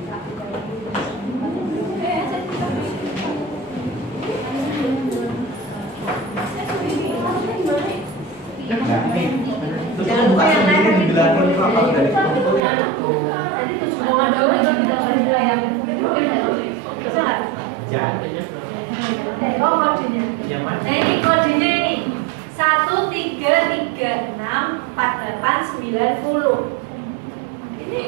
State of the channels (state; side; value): drops out; left; at 12.6 s